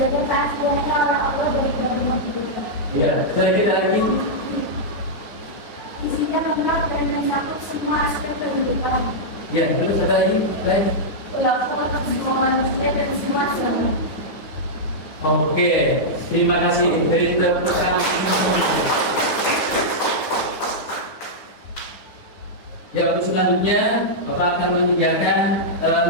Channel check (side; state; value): right; late; 9.6 ms